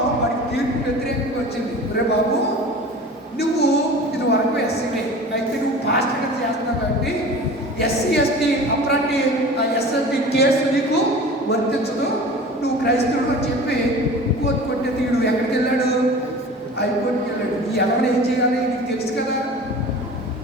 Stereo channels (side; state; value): both; normal; correlation 0.39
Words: వాడికి తీర్పు వ్యతిరేకంగా వచ్చింది. రే బాబు, నువ్వు ఇది వరకు ఎస్సీనే, అయితే నువ్వు పాస్టర్గా చేస్తున్నావు కాబట్టి ఎస్సీ ఎస్టీ అప్రాంటి ఎస్ఎస్టీ కేసు నీకు వర్తించదు, నువ్వు క్రైస్తవుడు అని చెప్పి కోర్టు కొట్టే తీడు. ఎక్కడికి వెళ్ళాడు? హైకోర్టుకి వెళ్ళాడు. ఈ ఎవరు ఏం చేయాలి? నీకు తెలుసు